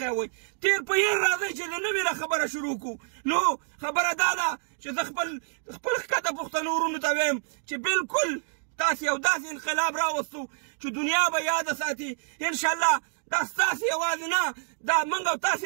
کوئ. تیر په هیر راځئ چې د نوې نه خبره شروع کړو. نو خبره دا ده چې زه خپل ښکته پښتنو ورونو ته وایم چې بالکل تاسې یو داسې انقلاب راوستو چې دنیا به یاده ساتي. انشاءالله دا ستاسې یوازې نه، دا موږ او تاسې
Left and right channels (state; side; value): silent; left; 60 dB below the other